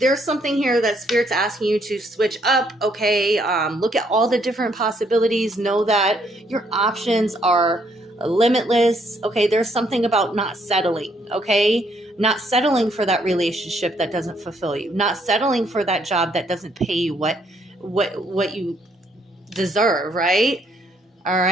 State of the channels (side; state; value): both; normal; correlation 0.70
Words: something here that Spirit's asking you to switch up. Okay, look at all the different possibilities. Know that your options are limitless. Okay, there's something about not settling. Okay, not settling for that relationship that doesn't fulfill you. Not settling for that job that doesn't pay you what you deserve. Right. All